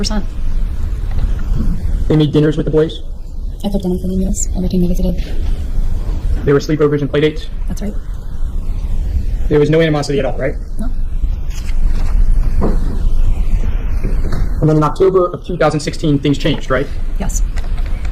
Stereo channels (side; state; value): both; identical; correlation 1.00